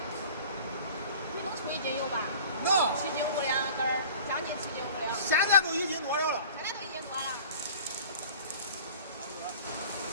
你能出1斤油吧？能。7斤5两根儿，将近7斤5两。现在都1斤多了。现在都1斤多了。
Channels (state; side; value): inverted; both; correlation -0.44